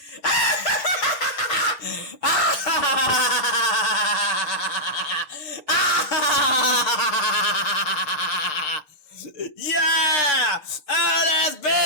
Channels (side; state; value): right; late; 6.6 ms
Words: Yeah! Oh, there's